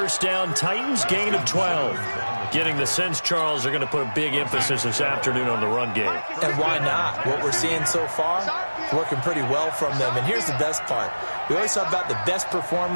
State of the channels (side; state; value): both; inverted; correlation -1.00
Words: down, Titans, gain of 12. Getting the sense, Charles, are going to put a big emphasis this afternoon on the run game. And why not? What we're seeing so far is working pretty well from them. And here's the best part. We always talk about the best